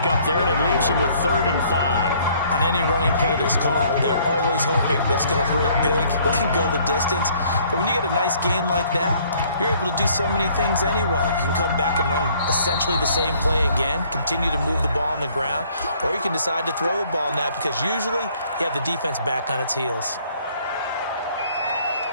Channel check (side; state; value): both; inverted; correlation -0.61